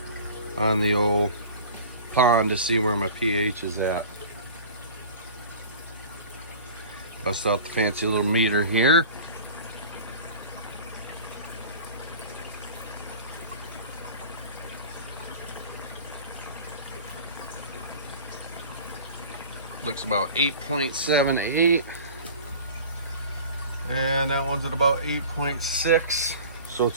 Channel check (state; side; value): inverted; both; correlation -0.41